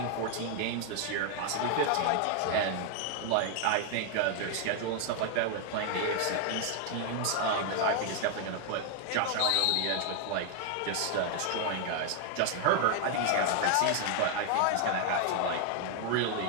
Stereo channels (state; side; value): different; both; correlation 0.00